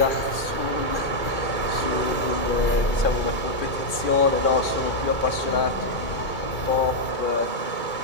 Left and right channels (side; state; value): right; late; 2.3 ms